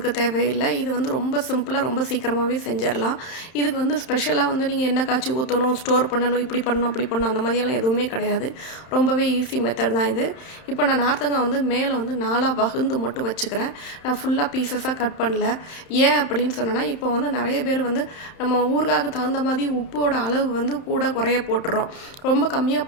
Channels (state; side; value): late; right; 31 ms